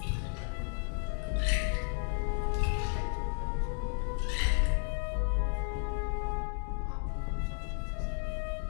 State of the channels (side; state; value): right; silent; 56 dB below the other